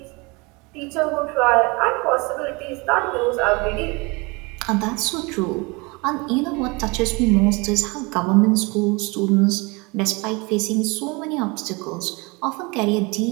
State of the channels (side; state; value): left; quieter; 27.3 dB